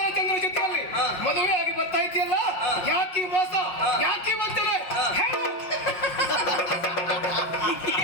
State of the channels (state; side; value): late; right; 5.6 ms